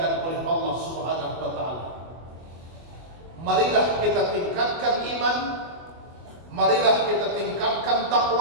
oleh Allah Subhanahu wa taala. Marilah kita tingkatkan iman, marilah kita tingkatkan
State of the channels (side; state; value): left; late; 24 ms